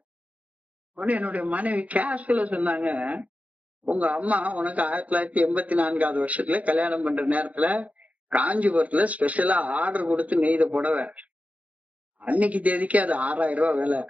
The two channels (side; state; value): left; late; 0.068 ms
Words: உடனே என்னுடைய மனைவி கேஷுவலா சொன்னாங்க, உங்க அம்மா உனக்கு 1984வது வருஷத்துல கல்யாணம் பண்ற நேரத்துல காஞ்சிபுரத்துல ஸ்பெஷலா ஆர்டர் கொடுத்து நெய்த புடவை, அன்னைக்கு தேதிக்கு அது 6000 ரூபாய் விலை,